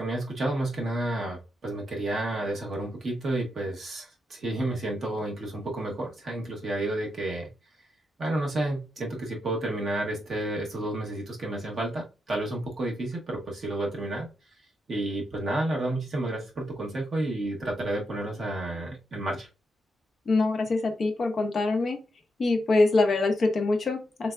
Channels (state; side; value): normal; both; correlation 0.83